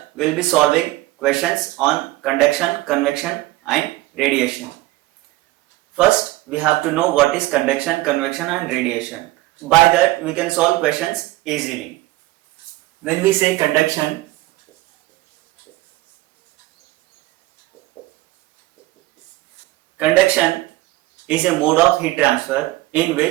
we will be solving questions on conduction, convection and radiation. First we have to know what is conduction, convection and radiation. By that we can solve questions easily. When we say conduction, conduction is a mode of heat transfer in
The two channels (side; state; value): left; quieter; 18.4 dB